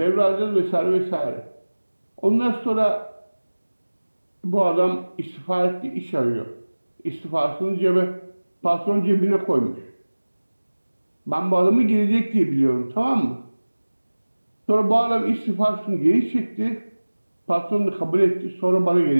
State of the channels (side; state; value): both; inverted; correlation -1.00